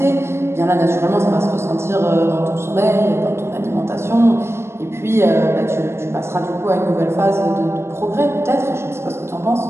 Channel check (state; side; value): late; left; 0.12 ms